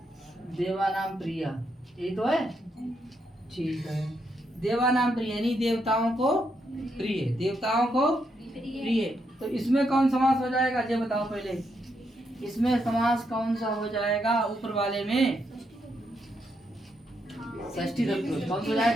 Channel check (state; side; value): normal; both; correlation 0.79